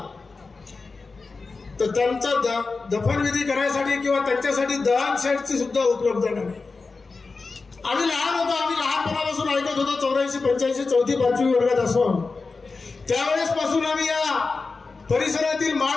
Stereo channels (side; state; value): right; quieter; 4.1 dB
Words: तर त्यांचा दफनविधी करायसाठी किंवा त्यांच्यासाठी दहन शेडची सुद्धा उपलब्धता नाही। आम्ही लहान होतो, आम्ही लहानपणापासून ऐकत होतो, 84-85 4थी 5वी वर्गात असून त्यावेळेस पासून आम्ही या परिसरातील माळ